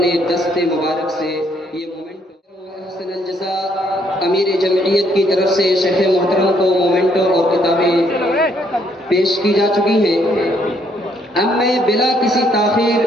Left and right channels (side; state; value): both; normal; correlation 0.69